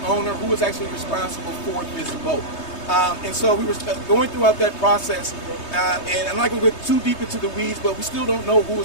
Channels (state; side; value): late; right; 3.2 ms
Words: owner, who was actually responsible for this boat. And so we were going throughout that process, and I'm not going to go too deep into the weeds, but we still don't know who